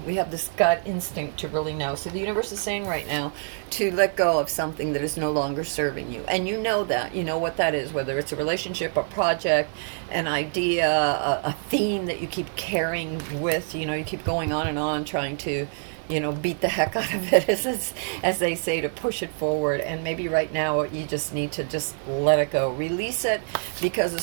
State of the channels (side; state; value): left; silent; 61 dB below the other